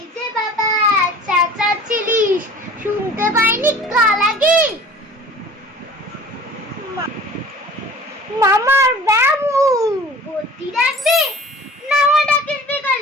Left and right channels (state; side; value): normal; both; correlation 0.44